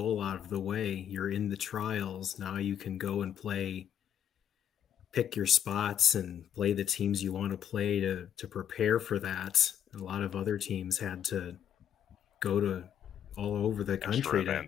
out of the way. You're in the trials. Now you can go and pick your spots and play the teams you want to play to prepare for that. A lot of other teams had to go to all over the country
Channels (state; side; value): quieter; right; 9.4 dB